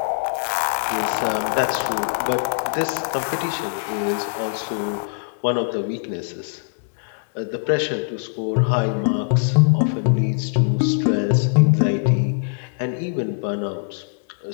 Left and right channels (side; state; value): right; silent; digital silence